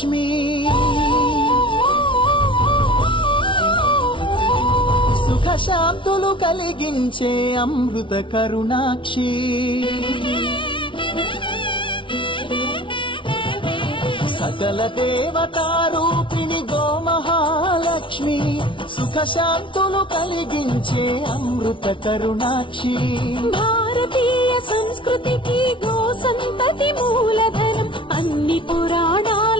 సుఖ శాంతులు కలిగించే అమృత కరుణాక్షి సకల దేవతారూపిణి గోమహాలక్ష్మి సుఖ శాంతులు కలిగించే అమృత కరుణాక్షి భారతీయ సంస్కృతికి గో సంతతి మూలధనం అన్ని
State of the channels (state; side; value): late; right; 0.25 ms